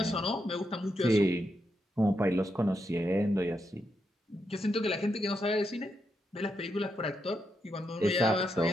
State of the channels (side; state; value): both; normal; correlation 0.82